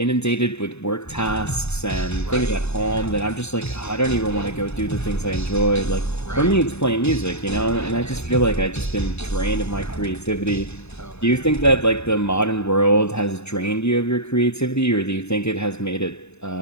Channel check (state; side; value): late; right; 0.80 ms